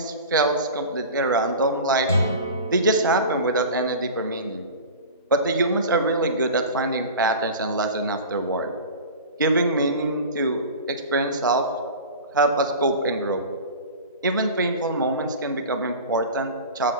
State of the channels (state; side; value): inverted; both; correlation -0.35